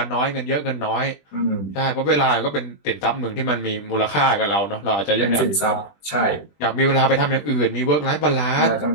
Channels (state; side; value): late; right; 20 ms